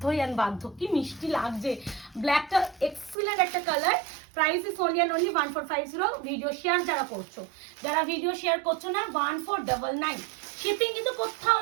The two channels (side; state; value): left; drops out; at 3.2 s